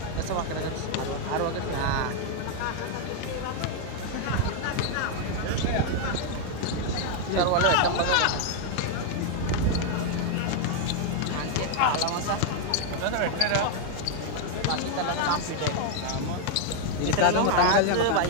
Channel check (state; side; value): different; both; correlation 0.00